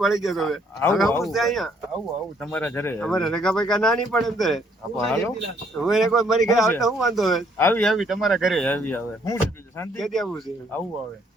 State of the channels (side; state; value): both; normal; correlation 0.66